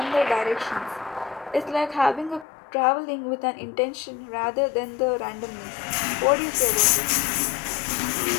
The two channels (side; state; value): right; drops out; at 2.5 s